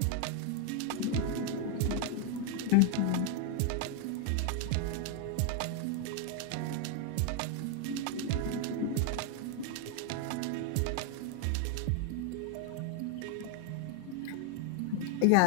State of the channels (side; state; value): both; different; correlation 0.00